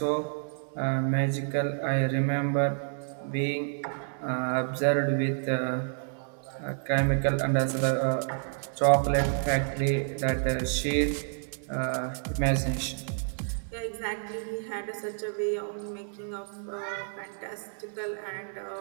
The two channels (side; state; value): left; silent; digital silence